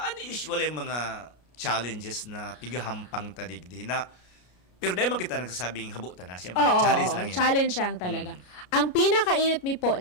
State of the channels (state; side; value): late; right; 33 ms